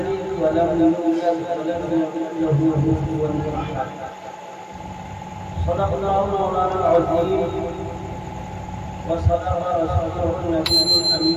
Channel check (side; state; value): both; identical; correlation 1.00